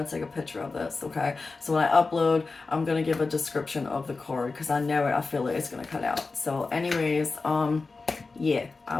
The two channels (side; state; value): right; quieter; 4.0 dB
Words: take a picture of this, okay? So when I upload, I'm gonna give a description of the card because I know it, I feel it, it's gonna cut out. So anyways, yeah, I